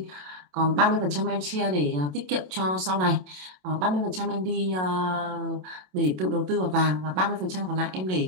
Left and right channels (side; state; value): left; late; 27 ms